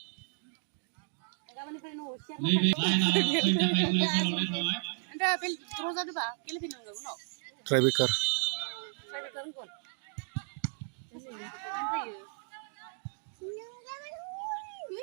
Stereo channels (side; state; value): left; silent; digital silence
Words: Anda pilih terus ada apa? Pilih pilih enggak? No. Trybreaker. Saya betul pun.